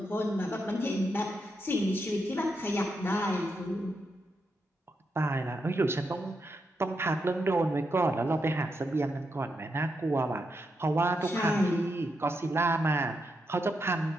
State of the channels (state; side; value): normal; both; correlation 0.83